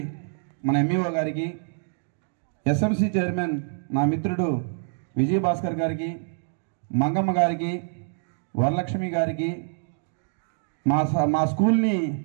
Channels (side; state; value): left; silent; digital silence